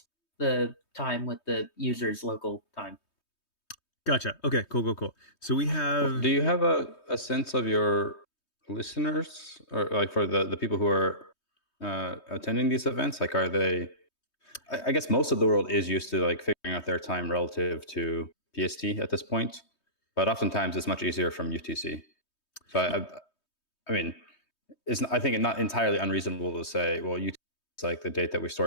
the time with the user's local time. Gotcha. Okay, cool. So we have Do you have a sense of your listeners, or like for the people who are attending these events? Like, are they? I guess most of the world is used to like figuring out their time relative to PST at this point, but oftentimes it's much easier from UTC. So I mean, I think it's not entirely unreasonable to say, well, UTC is like the date that we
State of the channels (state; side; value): late; right; 3.2 ms